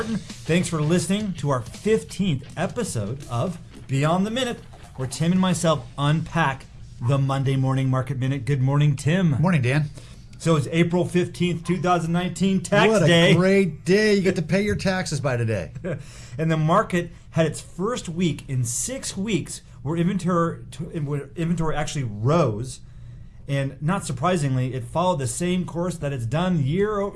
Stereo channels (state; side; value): identical; both; correlation 1.00